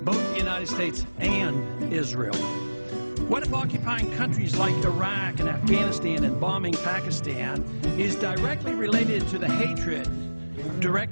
the United States and Israel? What if occupying countries like Iraq and Afghanistan and bombing Pakistan is directly related to the hatred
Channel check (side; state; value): both; inverted; correlation -1.00